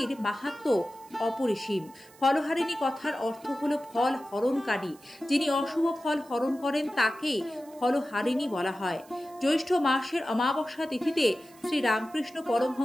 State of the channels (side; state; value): right; noise; hiss, 25 dB below the sound